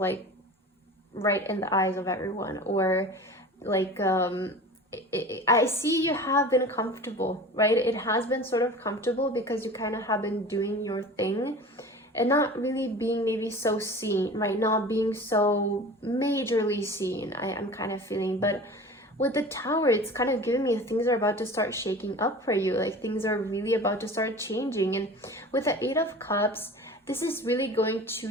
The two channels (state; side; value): normal; both; correlation 0.38